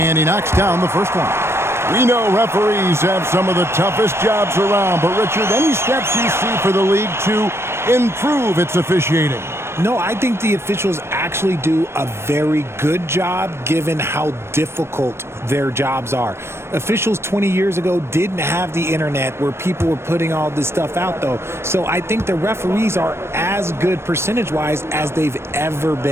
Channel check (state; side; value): late; left; 0.12 ms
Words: he knocks down the first one. We know referees have some of the toughest jobs around, but Richard, any steps you see for the league to improve its officiating? No, I think the officials actually do a very good job given how difficult their jobs are. Officials 20 years ago didn't have the internet where people were putting all this stuff out, though. So I think the referees are as good percentage-wise as they've ever